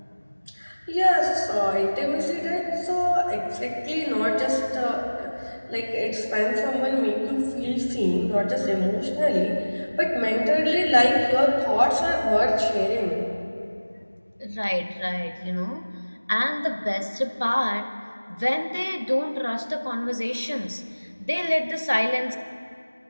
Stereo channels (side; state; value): both; inverted; correlation -1.00